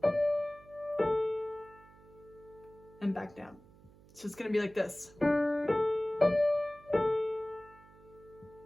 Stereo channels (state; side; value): noise; right; hum, 24 dB below the sound